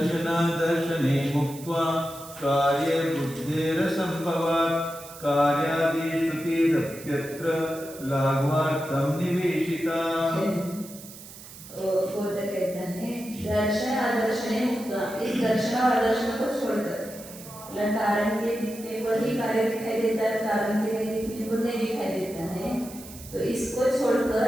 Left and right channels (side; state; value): right; noise; hiss, 16 dB below the sound